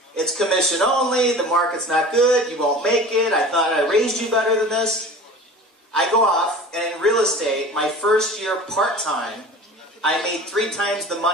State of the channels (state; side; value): normal; both; correlation 0.39